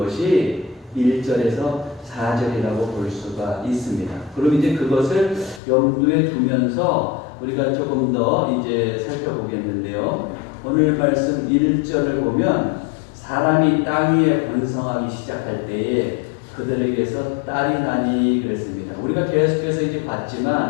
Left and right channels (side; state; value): right; drops out; at 5.6 s